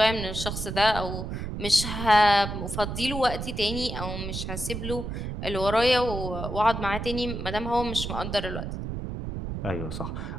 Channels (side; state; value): right; noise; rumble, 5 dB below the sound